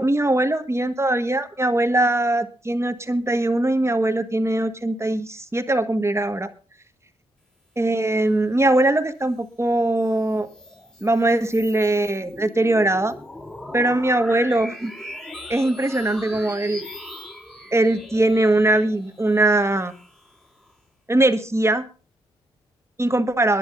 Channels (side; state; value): both; normal; correlation 0.80